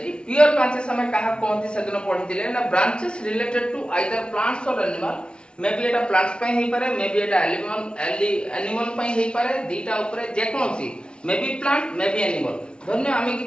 Pure branches um क्या कहते से दिन पढ़ी ना branches related to either plants और एनिमल। मे बी एटा प्लांट्स पे ही पारे, मे बी एटा एनिमल पे ही पारे। दीटा ऊपर जेकोसी may be plant may be animal. धन्य आम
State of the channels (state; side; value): late; right; 0.056 ms